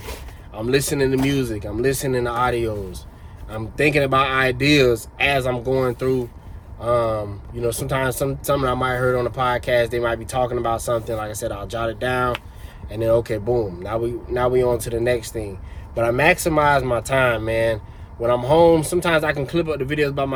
I'm listening to music, I'm listening to audios. I'm thinking about ideas as I'm going through. Sometimes something I might have heard on the podcast, they might be talking about something. Like I said, I'll jot it down and then okay, boom. Now we on to the next thing. But I maximize my time, man. When I'm home, sometimes I can clip up the videos by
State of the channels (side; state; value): both; identical; correlation 1.00